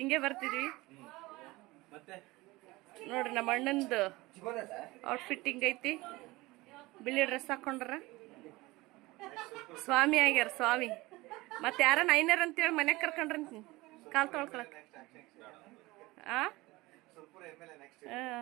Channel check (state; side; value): quieter; left; 20.8 dB